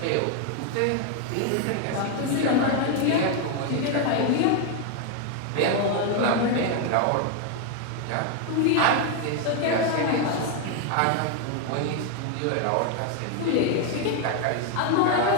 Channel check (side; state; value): both; different; correlation 0.01